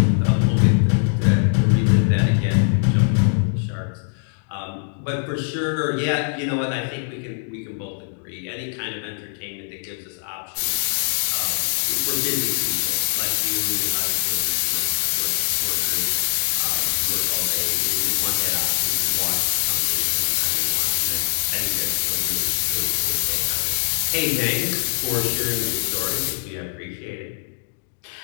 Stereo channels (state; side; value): silent; right; digital silence